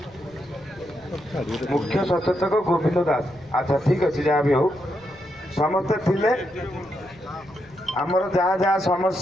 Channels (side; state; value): left; noise; rumble, 26 dB below the sound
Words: मुख्य सचेतक गोविंद दास। अच्छा ठीक अच्छे जहाँ भी हो समस्ते थिले आमर जहाँ जहाँ